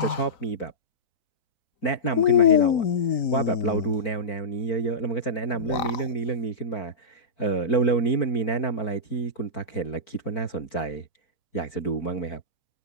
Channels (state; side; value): late; right; 3.9 ms